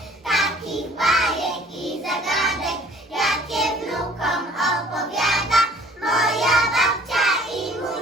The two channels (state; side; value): normal; both; correlation 0.54